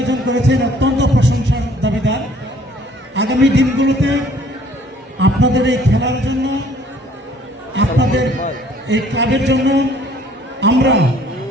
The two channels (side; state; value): both; normal; correlation 0.57